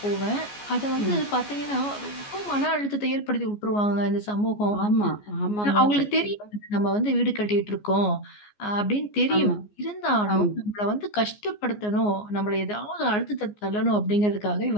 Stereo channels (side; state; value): right; late; 14 ms